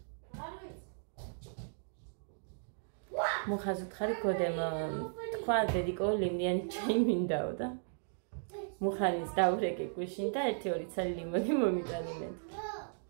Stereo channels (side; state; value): left; silent; digital silence